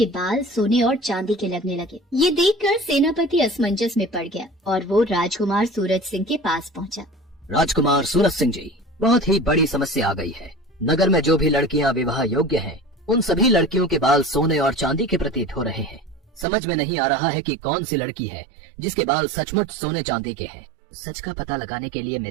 बाल सोने और चांदी के लगने लगे। ये देखकर सेनापति असमंजस में पड़ गया और वो राजकुमार सूरज सिंह के पास पहुंचा। राजकुमार सूरज सिंह जी, बहुत ही बड़ी समस्या आ गई है। नगर में जो भी लड़कियां विवाह योग्य हैं, उन सभी लड़कियों के बाल सोने और चांदी के प्रतीत हो रहे हैं। समझ में नहीं आ रहा है कि कौन सी लड़की है जिसके बाल सचमुच सोने चांदी के हैं। सच का पता लगाने के लिए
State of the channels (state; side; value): drops out; left; at 16.4 s